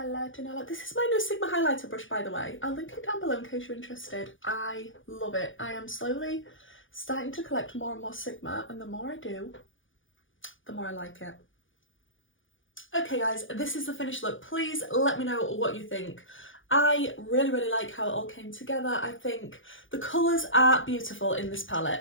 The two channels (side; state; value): right; late; 0.57 ms